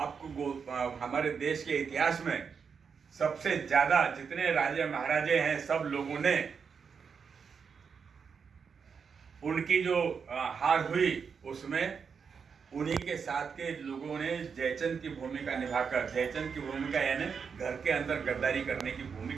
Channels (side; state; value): left; quieter; 6.1 dB